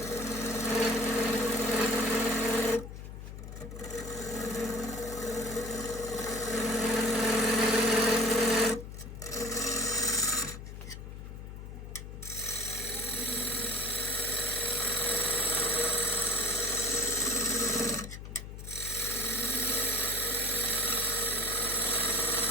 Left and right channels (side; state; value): left; noise; hum, 10 dB below the sound